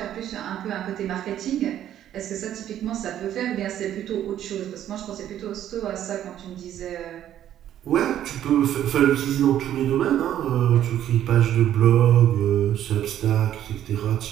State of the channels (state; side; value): quieter; left; 11.3 dB